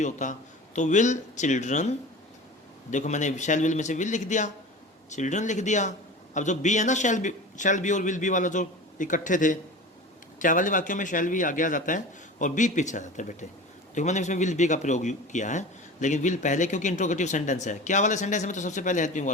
होता, तो विल चिल्ड्रन, देखो मैंने शैल विल में से विल लिख दिया, चिल्ड्रन लिख दिया। अब जो बी है ना, शैल बी और विल बी वाला जो इकट्ठे थे, क्या वाले वाक्यों में शैल बी आगे आ जाता है और बी पीछे आ जाता है बेटे। देखो मैंने इसमें विल बी का प्रयोग किया है, लेकिन विल पहले, क्योंकि इंट्रोगेटिव सेंटेंस है। क्या वाले सेंटेंस में तो सबसे पहले हेल्पिंग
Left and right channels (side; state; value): both; normal; correlation 0.34